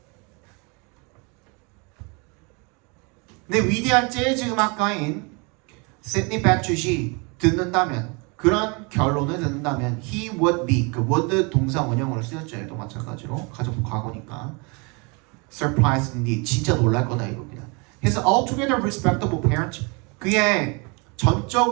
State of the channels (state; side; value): quieter; left; 31.0 dB